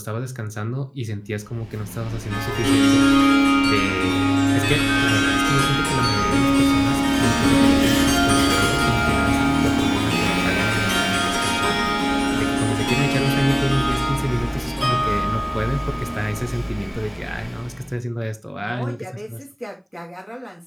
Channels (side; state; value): both; identical; correlation 1.00